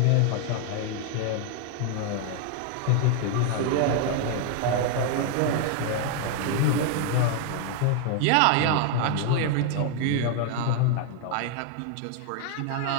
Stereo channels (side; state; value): both; different; correlation 0.00